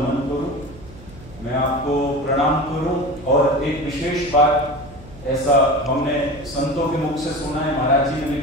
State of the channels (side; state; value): right; noise; hum, 19 dB below the sound